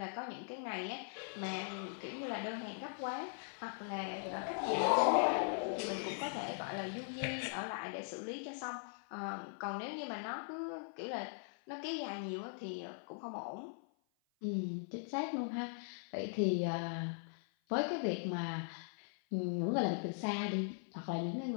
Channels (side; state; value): right; silent; 51 dB below the other